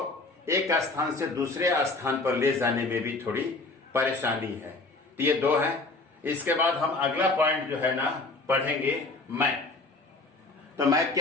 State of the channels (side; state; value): right; quieter; 3.3 dB